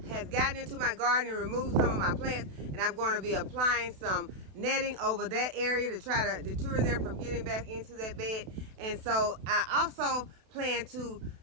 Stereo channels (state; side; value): late; left; 32 ms